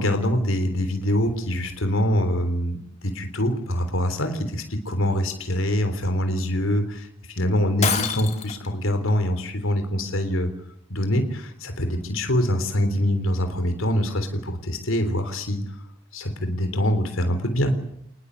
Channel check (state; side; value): normal; both; correlation 0.66